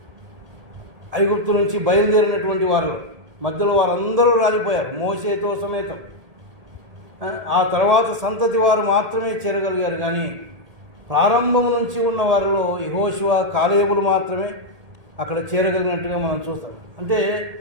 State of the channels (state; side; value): late; left; 1.8 ms